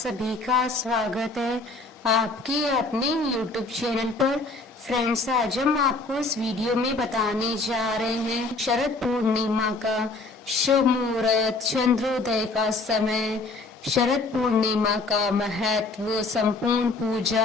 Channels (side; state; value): right; quieter; 3.4 dB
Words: का स्वागत है आपके अपने YouTube चैनल पर। फ्रेंड्स, आज हम आपको इस वीडियो में बताने जा रहे हैं शरद पूर्णिमा का शुभ मुहूर्त, चंद्रोदय का समय, शरद पूर्णिमा का महत्व, संपूर्ण